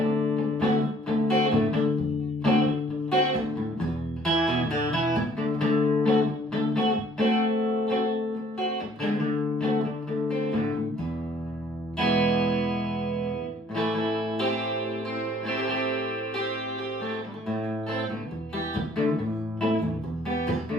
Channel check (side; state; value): both; normal; correlation 0.61